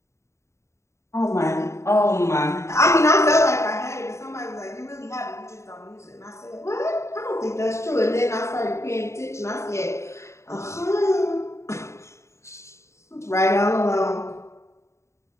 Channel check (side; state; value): right; late; 0.14 ms